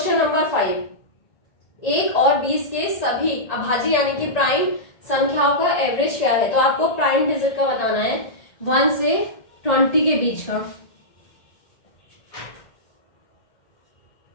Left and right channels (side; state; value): right; late; 1.8 ms